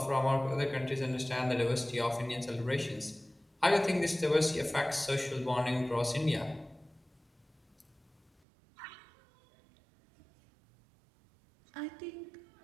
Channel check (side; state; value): left; drops out; at 8.3 s